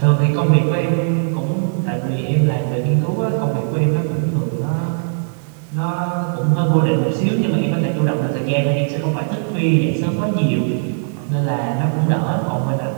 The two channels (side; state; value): left; silent; digital silence